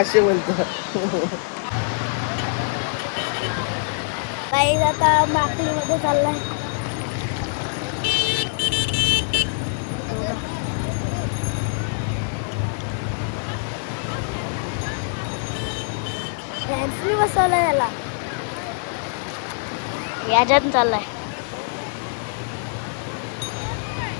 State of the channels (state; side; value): silent; right; digital silence